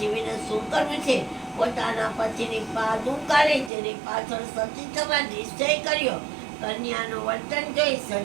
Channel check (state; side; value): drops out; left; at 3.7 s